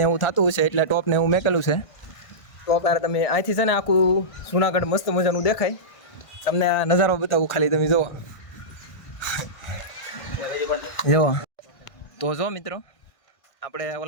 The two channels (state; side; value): late; right; 1.5 ms